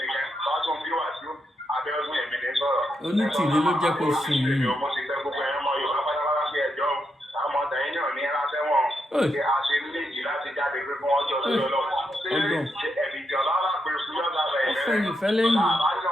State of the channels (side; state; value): both; normal; correlation 0.82